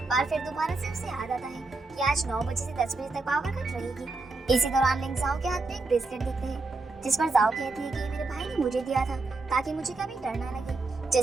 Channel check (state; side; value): quieter; left; 3.5 dB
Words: और फिर दोबारा से उसे याद आता है कि आज 9 बजे से 10 बजे तक पावर कट रहेगी। इसी दौरान लिंक जाओ के हाथ में एक ब्रेसलेट देखते हैं, जिस पर जाओ कहती है कि मेरे भाई ने मुझे दिया था ताकि मुझे कभी डर ना लगे।